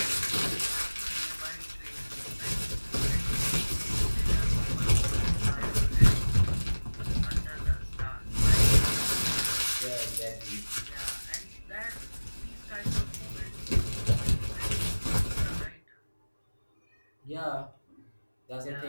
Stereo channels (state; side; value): inverted; both; correlation -1.00